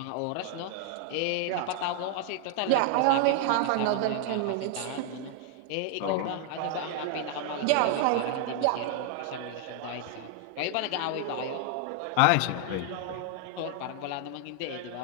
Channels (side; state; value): both; different; correlation 0.00